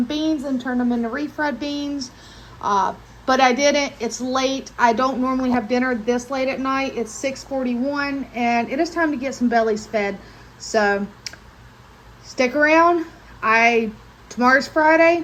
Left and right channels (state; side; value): identical; both; correlation 1.00